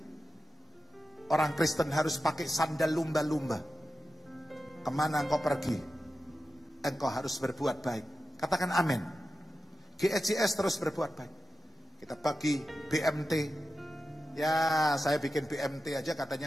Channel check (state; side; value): normal; both; correlation 0.92